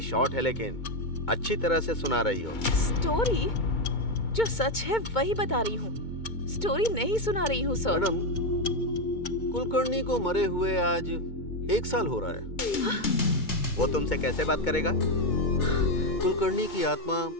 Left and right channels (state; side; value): late; right; 2.2 ms